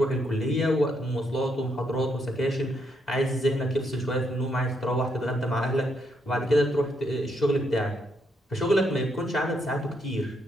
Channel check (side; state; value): both; normal; correlation 0.76